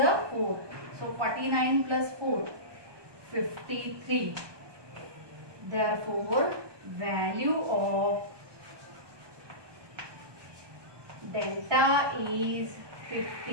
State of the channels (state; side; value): late; left; 1.2 ms